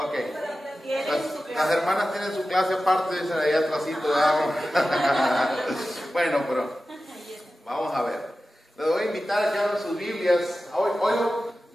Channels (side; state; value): both; normal; correlation 0.94